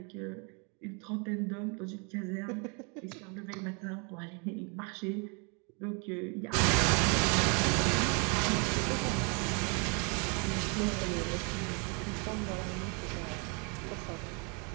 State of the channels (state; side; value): quieter; left; 34.4 dB